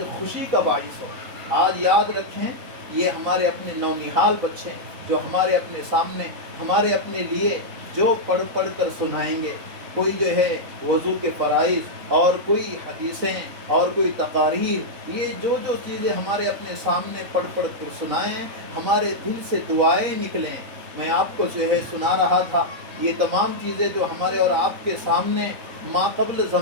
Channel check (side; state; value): left; late; 4.0 ms